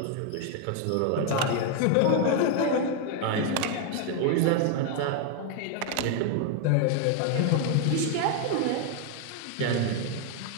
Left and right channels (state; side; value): different; both; correlation 0.01